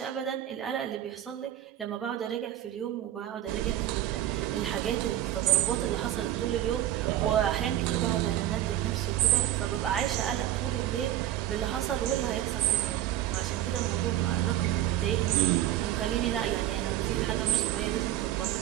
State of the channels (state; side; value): quieter; left; 12.9 dB